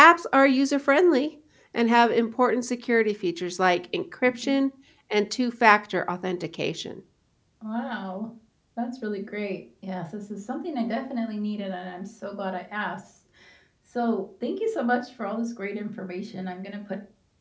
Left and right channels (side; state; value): both; identical; correlation 1.00